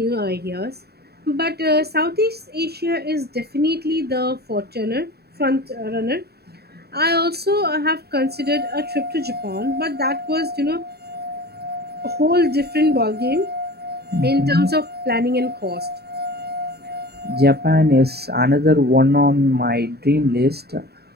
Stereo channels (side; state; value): left; late; 0.47 ms